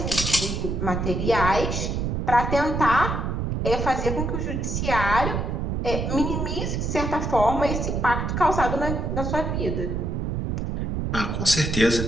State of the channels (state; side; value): noise; right; rumble, 1 dB below the sound